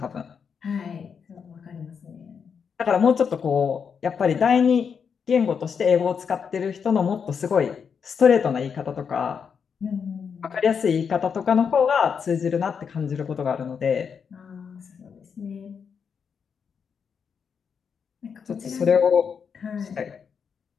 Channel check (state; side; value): quieter; right; 6.6 dB